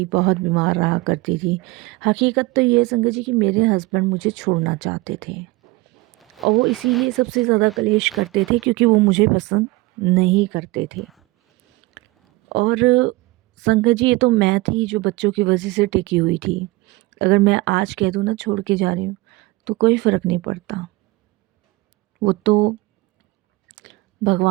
बहुत बीमार रहा करती थी। हकीकत तो ये है संगत जी कि मेरे हस्बैंड मुझे छोड़ना चाहते थे और वो इसीलिए सबसे ज़्यादा कलेश करते थे क्योंकि वो मुझे पसंद नहीं करते थे। और संगत जी ये तो मैं थी जो बच्चों की वजह से टिकी हुई थी। अगर मैं आज कह दूँ ना छोड़ के जा रही हूँ तो कोई फ़र्क नहीं पड़ता। वो तो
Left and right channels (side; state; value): left; quieter; 21.6 dB